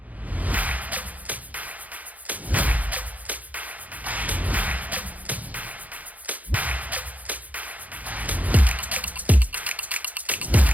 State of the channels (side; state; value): left; late; 0.076 ms